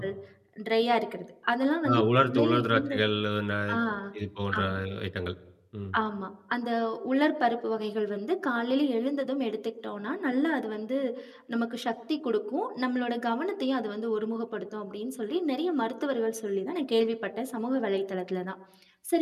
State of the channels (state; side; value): identical; both; correlation 1.00